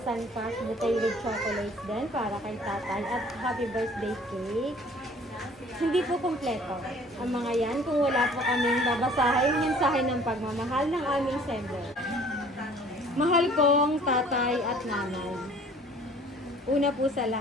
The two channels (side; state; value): both; normal; correlation 0.52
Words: cash with chocolates din para kay tatay at happy birthday cake. Hindi po kumpleto ang mga yan kung wala po kaming babasahin mensahe ng pagmamahal ng aming sender. Mahal kong tatay at nanay. Una po sa